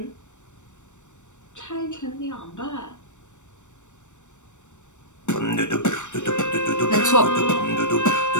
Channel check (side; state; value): right; late; 0.84 ms